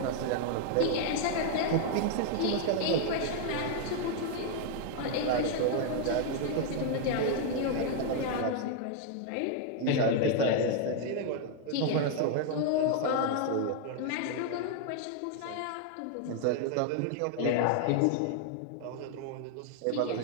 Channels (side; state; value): both; different; correlation 0.00